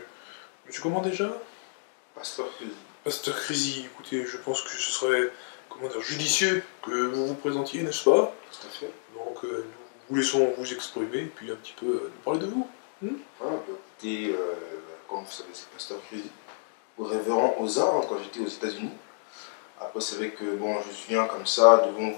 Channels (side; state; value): right; silent; digital silence